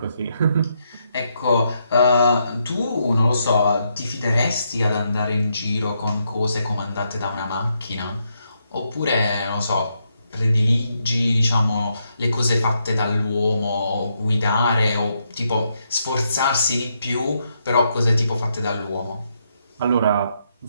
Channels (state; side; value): inverted; both; correlation -0.79